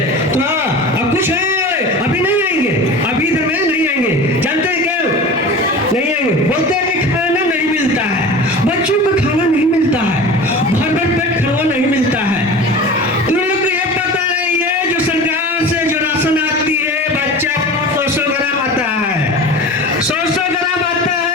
तो हाँ, अब कुछ है अभी नहीं आएंगे, अभी इधर में नहीं आएंगे। जानते हैं क्या नहीं आएंगे? बोलते हैं कि खाना नहीं मिलता है, बच्चों को खाना नहीं मिलता है, भर भर पेट खाना नहीं मिलता है। तुम लोग को ये पता नहीं है जो सरकार से जो राशन आती है बच्चा 100 ग्राम आता है, 100 ग्राम आता है।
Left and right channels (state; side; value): normal; both; correlation 0.34